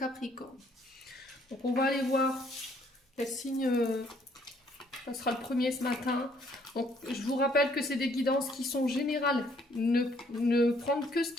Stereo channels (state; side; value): normal; both; correlation 0.64